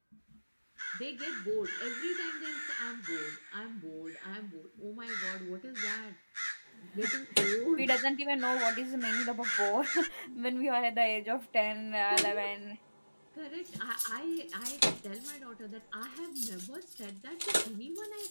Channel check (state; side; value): inverted; both; correlation -1.00